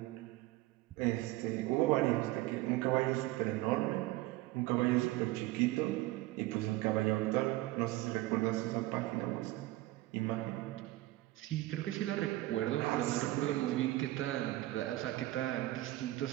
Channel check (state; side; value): quieter; left; 17.7 dB